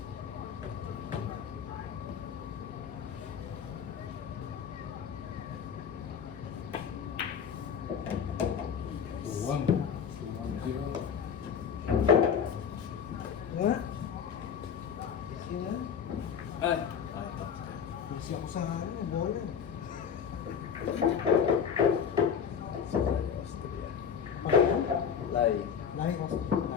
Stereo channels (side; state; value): right; quieter; 7.4 dB